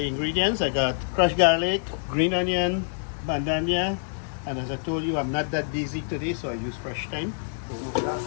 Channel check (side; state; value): right; silent; digital silence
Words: I got crushed garlic, green onion, bandanya, and as I told you, I'm not that busy today, so I use fresh thyme.